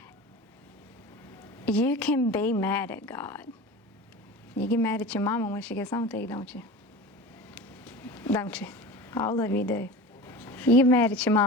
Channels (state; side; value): normal; both; correlation 0.33